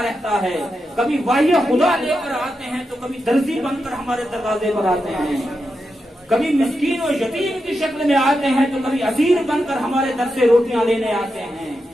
رہتا ہے، کبھی وحی خدا لے کر آتے ہیں تو کبھی درزی بن کر ہمارے دروازے پر آتے ہیں، کبھی مسکین و یتیم کی شکل میں آتے ہیں تو کبھی اسیر بن کر ہمارے در سے روٹیاں لینے آتے ہیں۔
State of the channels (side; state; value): both; normal; correlation 0.87